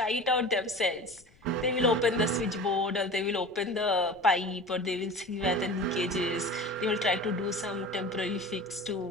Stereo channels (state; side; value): noise; left; rumble, 28 dB below the sound